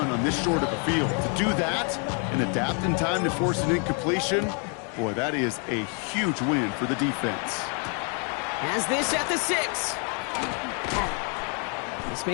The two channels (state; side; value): quieter; right; 38.9 dB